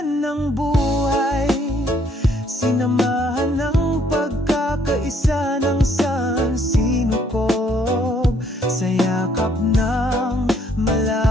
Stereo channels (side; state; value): both; normal; correlation 0.66